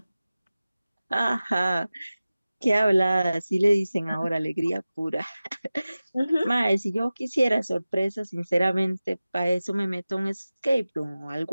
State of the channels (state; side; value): inverted; both; correlation -0.96